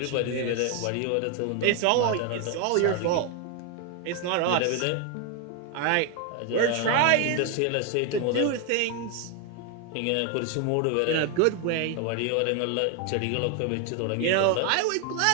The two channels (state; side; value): different; both; correlation 0.01